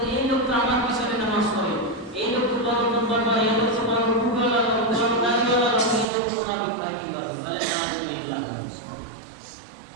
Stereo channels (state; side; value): drops out; left; at 6.1 s